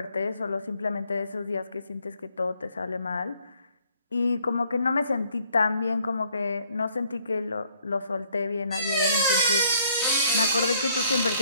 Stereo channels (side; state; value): both; inverted; correlation -0.65